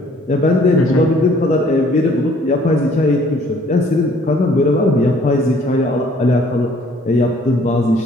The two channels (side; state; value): both; normal; correlation 0.59